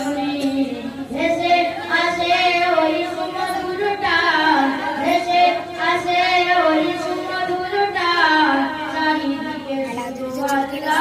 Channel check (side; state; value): both; identical; correlation 1.00